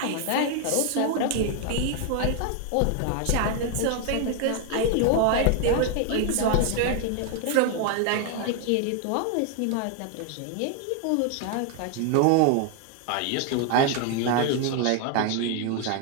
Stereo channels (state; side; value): different; both; correlation 0.01